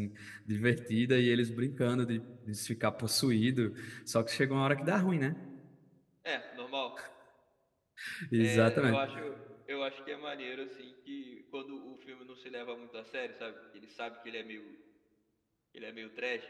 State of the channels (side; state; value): both; identical; correlation 1.00